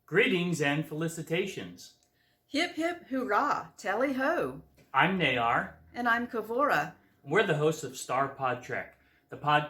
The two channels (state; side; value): identical; both; correlation 1.00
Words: Greetings and felicitations. Hip hip hurrah, tally ho. I'm Nayar. And I'm Kavora. We're the hosts of StarPodTrek, the